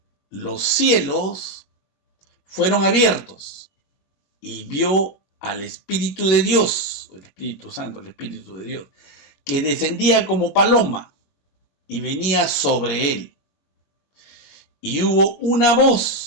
los cielos fueron abiertos, y vio al Espíritu de Dios, el Espíritu Santo, el Espíritu de Dios, que descendía como paloma y venía sobre él. Y hubo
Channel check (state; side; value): late; right; 21 ms